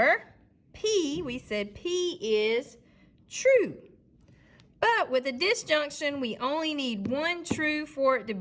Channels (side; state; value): both; identical; correlation 1.00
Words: P, we said P is true. But with a disjunction, we only need one true for it to